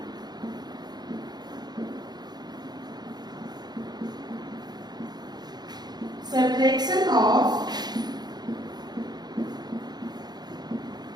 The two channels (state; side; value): late; left; 0.20 ms